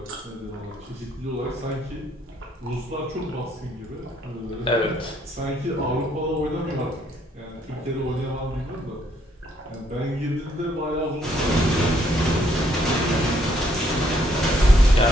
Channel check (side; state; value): both; normal; correlation 0.69